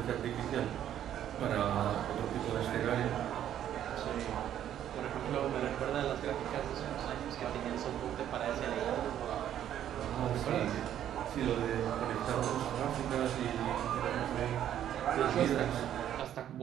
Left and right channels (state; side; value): quieter; left; 10.8 dB